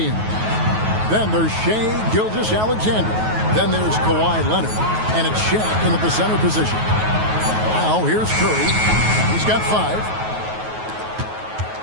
Then there's Shai Gilgeous-Alexander. Then there's Kawhi Leonard. And it's Shaq in at the center position. Now here's Curry. He's got 5.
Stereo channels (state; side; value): late; left; 9.3 ms